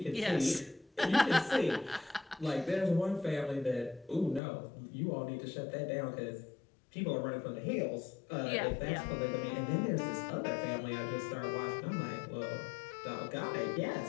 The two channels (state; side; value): drops out; right; at 4.4 s